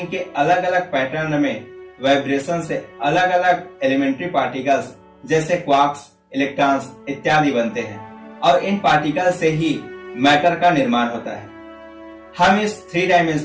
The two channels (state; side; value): identical; both; correlation 1.00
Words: के अलग अलग पैटर्न में वाइब्रेशन से अलग अलग एलिमेंट्री पार्टिकल्स जैसे क्वार्क्स, इलेक्ट्रॉन्स इत्यादि बनते हैं और इन पार्टिकल से ही मैटर का निर्माण होता है। हम इस 3